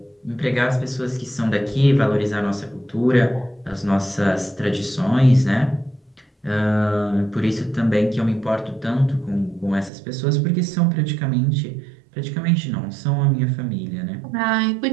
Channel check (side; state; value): left; drops out; at 9.9 s